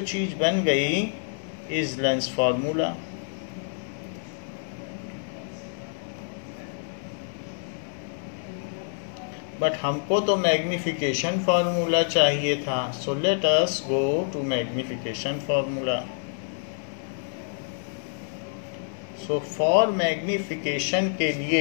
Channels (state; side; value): silent; right; 60 dB below the other